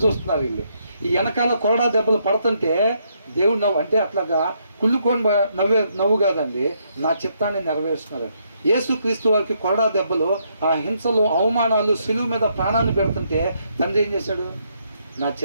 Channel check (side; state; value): both; inverted; correlation -0.75